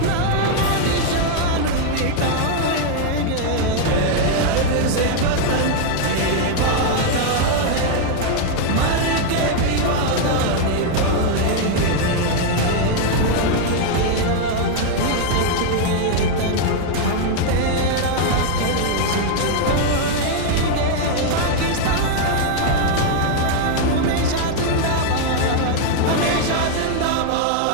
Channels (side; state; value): both; different; correlation 0.00